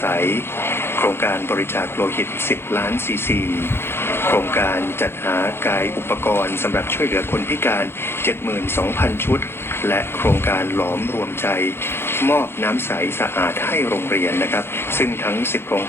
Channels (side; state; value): right; late; 0.11 ms